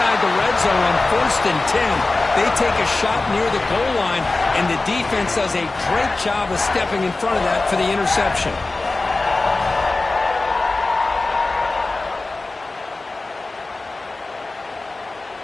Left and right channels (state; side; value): quieter; right; 3.3 dB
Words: the red zone on first and 10. They take a shot near the goal line, and the defense does a great job of stepping in front of that for the interception.